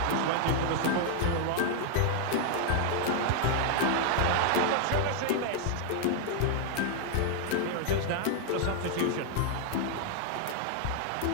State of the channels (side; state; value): both; different; correlation 0.00